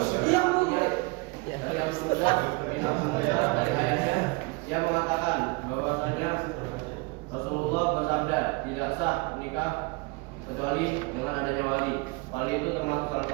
sah nikah kecuali dengan adanya wali. Wali itu termasuk salah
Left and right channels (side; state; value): left; quieter; 27.1 dB